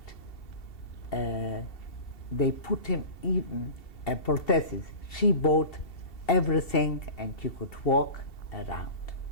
they put him even a prosthesis. She bought everything, and he could walk around.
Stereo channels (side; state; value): right; late; 2.7 ms